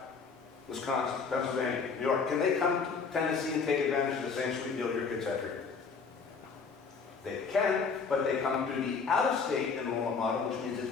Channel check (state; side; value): quieter; right; 5.3 dB